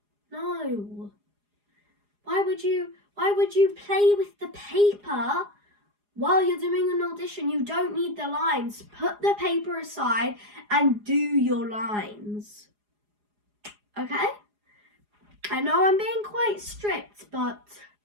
No. Why would you play with the paper while you're doing an audition? You don't need the lines. Put the paper aside and do your lines. Okay? I know I'm being quite strict, but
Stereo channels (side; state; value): left; late; 4.8 ms